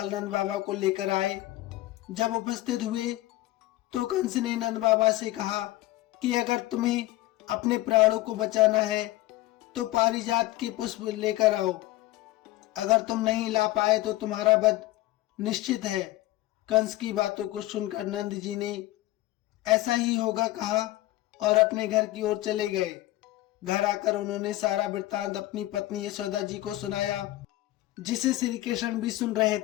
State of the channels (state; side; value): quieter; right; 17.0 dB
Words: नंद बाबा को लेकर आए। जब उपस्थित हुए तो कंस ने नंद बाबा से कहा कि अगर तुम्हें अपने प्राणों को बचाना है तो पारिजात के पुष्प लेकर आओ। अगर तुम नहीं ला पाए तो तुम्हारा वध निश्चित है। कंस की बातों को सुनकर नंद जी ने ऐसा ही होगा कहा और अपने घर की ओर चले गए। घर आकर उन्होंने सारा वृत्तांत अपनी पत्नी यशोदा जी को सुनाया, जिसे श्री कृष्ण भी सुन रहे